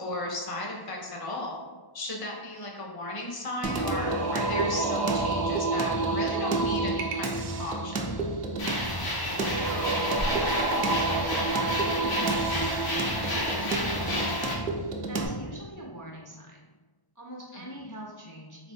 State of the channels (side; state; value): right; late; 1.0 ms